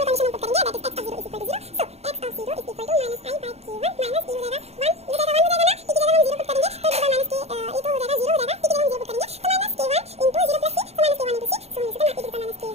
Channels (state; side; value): late; left; 0.31 ms